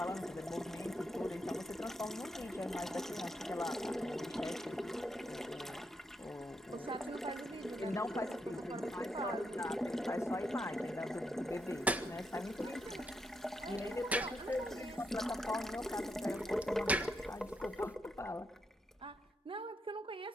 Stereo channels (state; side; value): normal; both; correlation 0.80